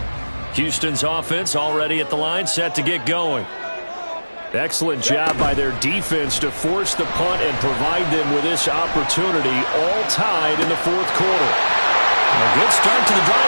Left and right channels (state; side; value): inverted; both; correlation -1.00